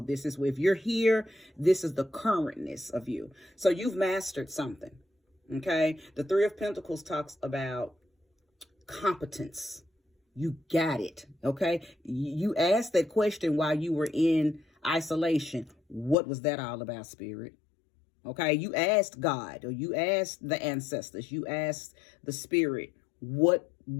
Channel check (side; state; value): right; drops out; at 16.2 s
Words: This is where, if you're here, this is the currentness of you. So you've mastered something. Okay. The Three of Pentacles talks about competence. You got it. Okay. You asked that question while you were in isolation. What was that all about, Spirit? Okay. You asked God, or you asked the ancestors, you asked the Spirit, what